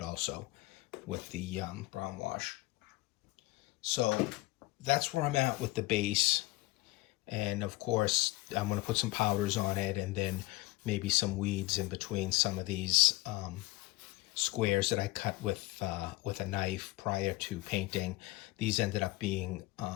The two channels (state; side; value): quieter; right; 20.6 dB